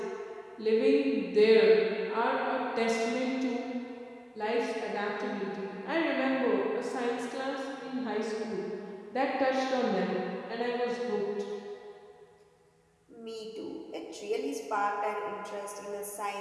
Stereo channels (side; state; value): both; identical; correlation 1.00